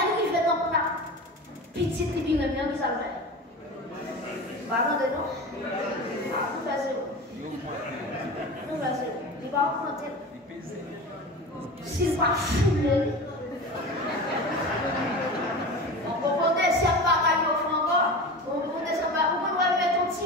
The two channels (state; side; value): normal; both; correlation 0.30